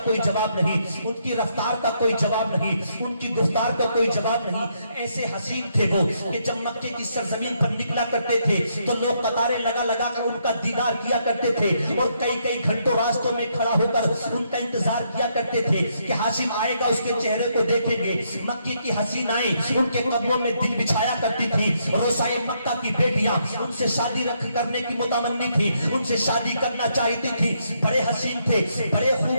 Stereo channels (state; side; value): inverted; both; correlation -0.75